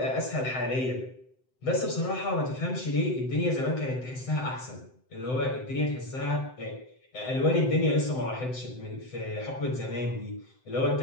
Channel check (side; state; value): right; late; 7.8 ms